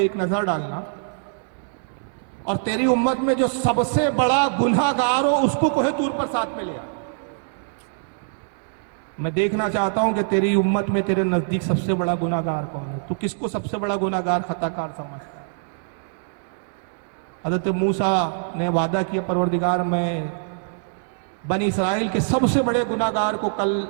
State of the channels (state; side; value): silent; left; digital silence